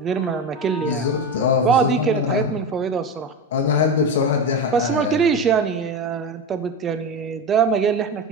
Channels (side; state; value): both; normal; correlation 0.21